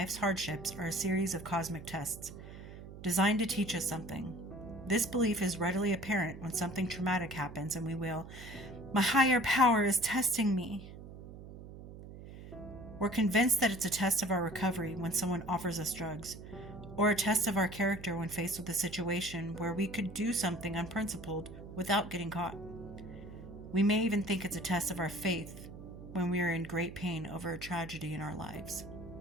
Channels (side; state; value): right; noise; hum, 14 dB below the sound